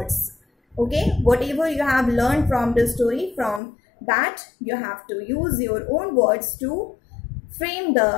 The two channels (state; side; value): drops out; right; at 3.6 s